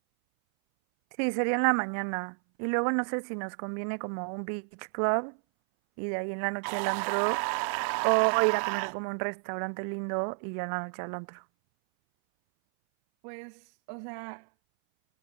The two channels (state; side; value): silent; left; 57 dB below the other